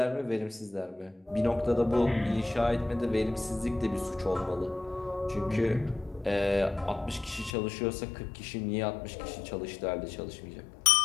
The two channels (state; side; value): drops out; right; at 7.5 s